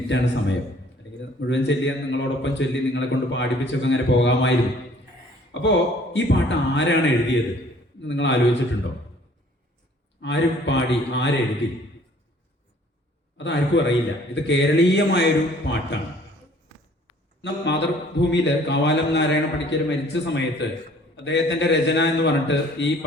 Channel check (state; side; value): normal; both; correlation 0.56